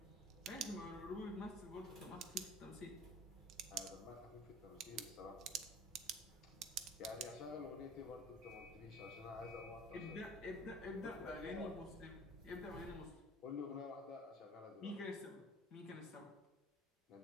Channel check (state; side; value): normal; both; correlation 0.46